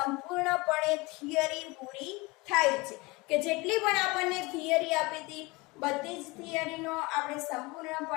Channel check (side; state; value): right; quieter; 24.1 dB